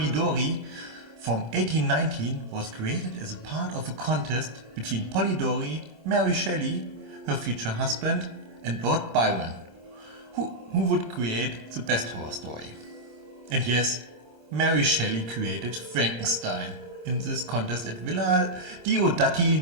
from 1819, was created as a part of a contest between Polidori, Mary Shelley, her future husband, and Lord Byron, who would create the best horror story. And yes, Mary Shelley created Frankenstein in this contest at Villa Diodati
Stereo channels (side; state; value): left; late; 26 ms